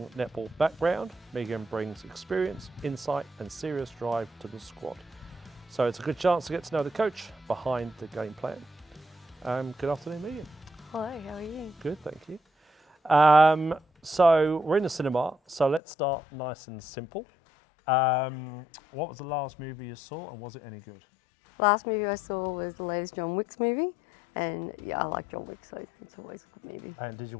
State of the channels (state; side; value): drops out; right; at 15.8 s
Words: netball background, Megan brings experience, insight and serious drive to the squad. So it's a good chance to get to know the coach behind the game plan. Good afternoon, Megan. Hello, how are you? Good, thank you. So we're in the cinema, so let's start nice and simple. What was the last movie you saw and was it any good? Last movie I saw was the latest John Wick's movie, and yeah, I like John Wick, so it's always a good movie. And did you